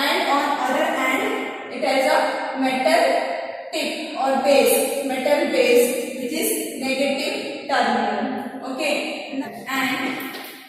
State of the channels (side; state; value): both; identical; correlation 1.00